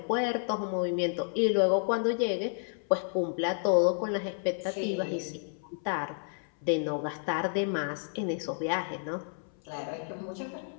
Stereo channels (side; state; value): right; silent; 57 dB below the other